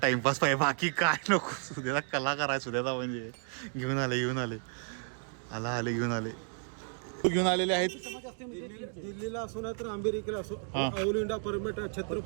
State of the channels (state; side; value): silent; left; 56 dB below the other